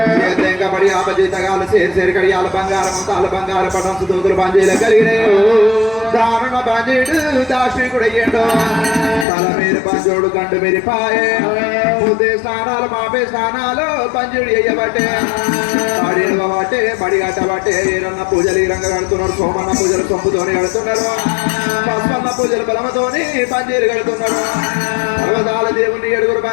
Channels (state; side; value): drops out; right; at 9.2 s